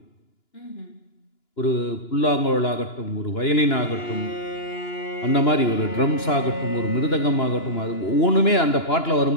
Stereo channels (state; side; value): late; right; 2.9 ms